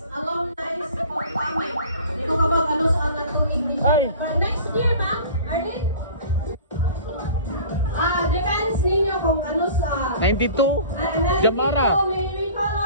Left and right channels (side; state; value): both; inverted; correlation -0.43